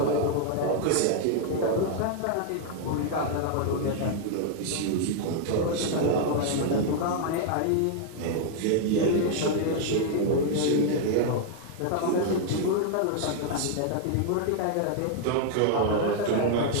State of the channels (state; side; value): different; both; correlation 0.00